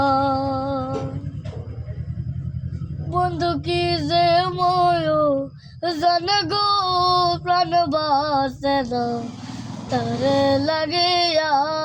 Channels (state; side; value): identical; both; correlation 1.00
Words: বন্ধু কি যে ময় জানে গো প্রাণ বাসে না তারে লাগিয়া